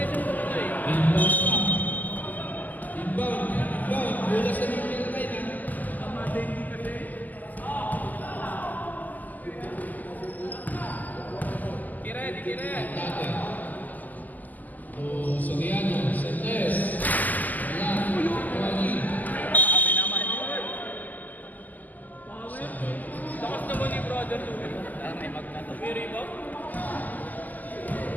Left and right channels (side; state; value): right; late; 0.082 ms